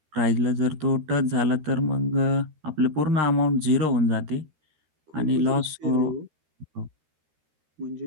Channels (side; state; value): left; late; 13 ms